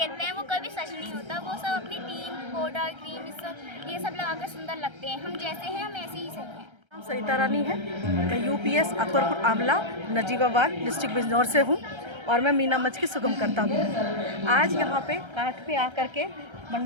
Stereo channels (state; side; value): late; left; 1.3 ms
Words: हैं वो कभी सच नहीं होता, वो सब अपनी टीम, पाउडर, क्रीम, ये सब लगाकर सुंदर लगते हैं। हम जैसे हैं हम ऐसे ही सही हैं। नाम सरिता रानी है, मैं यूपीएस अकबरपुर आमला नजीबाबाद डिस्ट्रिक्ट बिजनौर से हूँ और मैं मीना मंच की सुगम करता हूँ। आज यहाँ पे काठ पे आकर के